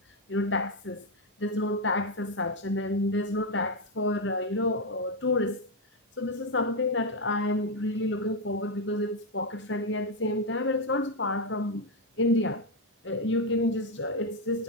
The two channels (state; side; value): normal; both; correlation 0.03